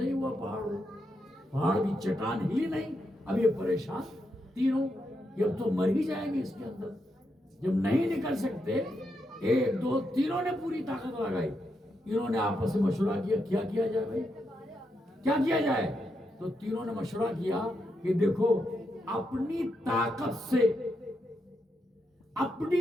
ہوا، پہاڑ کی چٹان ہلی نہیں۔ اب یہ پریشان تینوں کہ اب تو مر ہی جائیں گے اس کے اندر، جب نہیں نکل سکتے، 1 2 تینوں نے پوری طاقت لگائی۔ انہوں نے آپس میں مشورہ کیا کیا کیا جائے بھائی، کیا کیا جائے؟ تو تینوں نے مشورہ کیا کہ دیکھو، اپنی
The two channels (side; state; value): both; normal; correlation 0.83